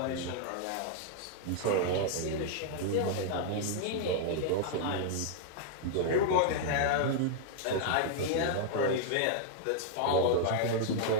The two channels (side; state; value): both; different; correlation -0.01